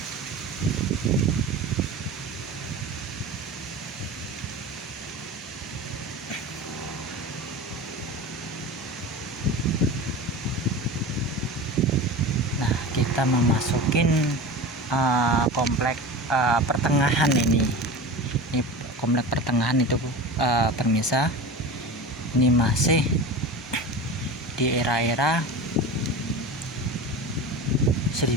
Kita memasukin komplek pertengahan ini komplek pertengahan itu, pemirsa. Ini masih di era-era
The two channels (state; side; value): normal; both; correlation 0.31